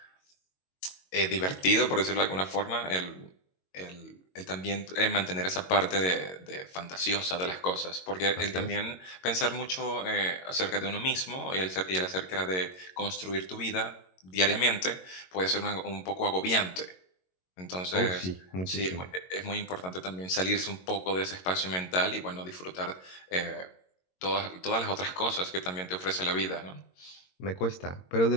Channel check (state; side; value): late; right; 22 ms